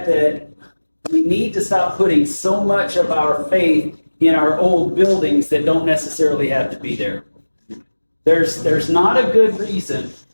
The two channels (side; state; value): both; inverted; correlation -1.00